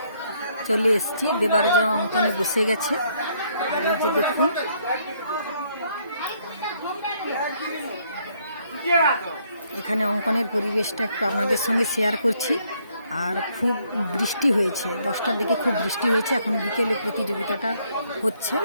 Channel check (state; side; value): inverted; both; correlation -0.69